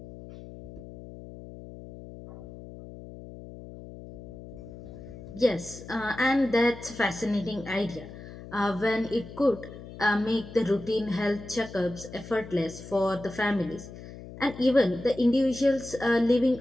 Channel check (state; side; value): noise; left; hum, 14 dB below the sound